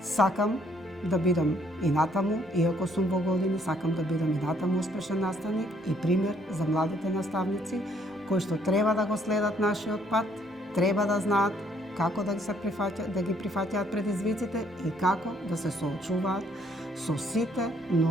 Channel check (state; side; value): normal; both; correlation 0.66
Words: Сакам да бидам и натаму, иако сум во години, сакам да бидам и натаму успешен наставник и пример за младите наставници кои што треба да го следат нашиот пат, треба да знаат како да ги прифаќаат предизвиците и како да се соочуваат со сите